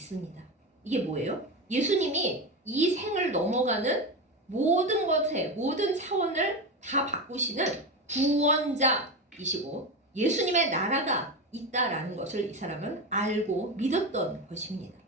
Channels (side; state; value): both; normal; correlation 0.19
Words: 이게 뭐예요? 예수님이 이 생을 넘어가는 모든 것에 모든 차원을 다 바꾸시는 구원자이시고 예수님의 나라가 있다라는 것을 이 사람은 알고 믿었던 것입니다.